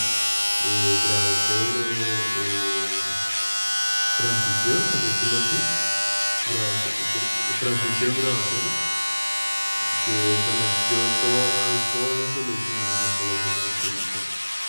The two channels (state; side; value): inverted; both; correlation -1.00